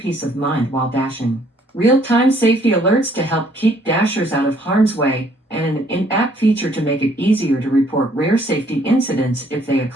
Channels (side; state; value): both; normal; correlation 0.63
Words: of mind while dashing, real-time safety alerts to help keep Dashers out of harm's way, and an in-app feature to make it easier to report rare safety incidents if they